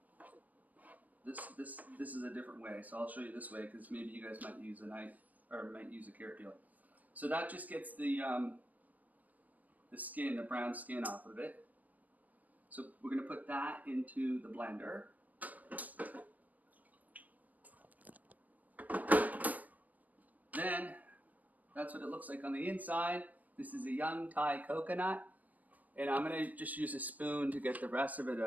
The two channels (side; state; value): left; late; 0.077 ms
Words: This is a different way, so I'll show you this way because maybe you guys might use a knife or might use a carrot peeler. So that just gets the skin, the brown skin off of it. So we're going to put that into the blender. Then that's what it looks like on the inside. This is a young Thai coconut, and I'm going to just use a spoon to get the rest of it